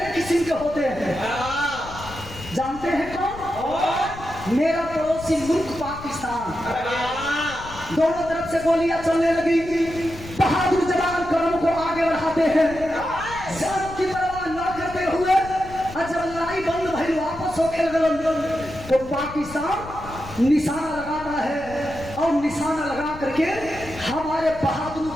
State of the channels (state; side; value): noise; left; rumble, 15 dB below the sound